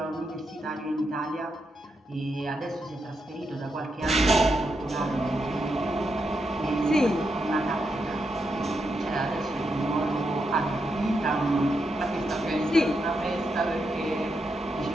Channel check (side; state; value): both; normal; correlation 0.83